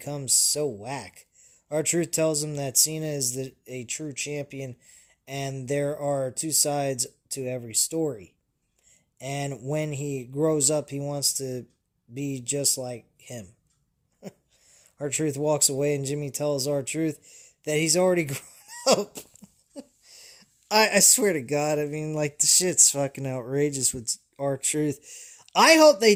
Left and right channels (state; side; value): identical; both; correlation 1.00